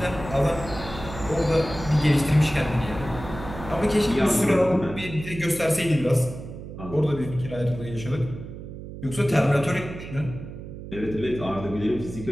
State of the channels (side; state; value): right; noise; hum, 11 dB below the sound